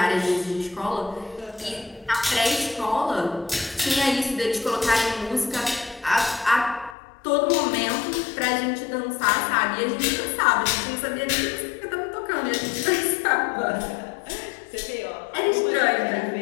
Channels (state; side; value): drops out; right; at 7.0 s